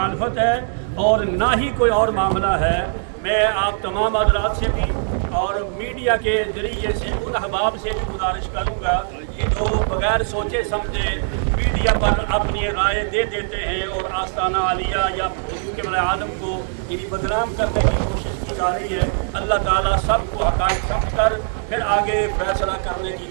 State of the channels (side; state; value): left; silent; digital silence